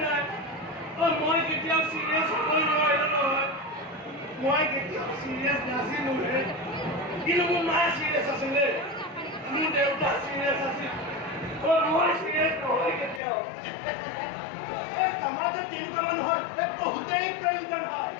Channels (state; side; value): drops out; right; at 13.2 s